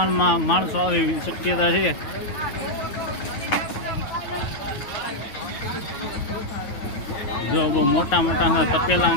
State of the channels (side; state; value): right; late; 9.3 ms